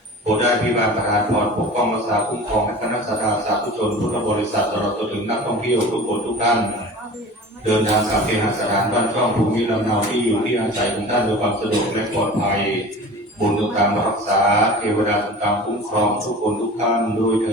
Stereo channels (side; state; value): both; normal; correlation 0.38